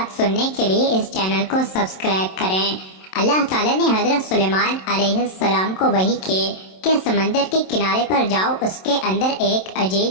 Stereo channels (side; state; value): right; late; 27 ms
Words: سننے کے لیے اس چینل کو سبسکرائب کریں۔ اللہ تعالیٰ نے حضرت سلیمان علیہ السلام کو وحی کی کہ سمندر کے کنارے پر جاؤ، اس کے اندر ایک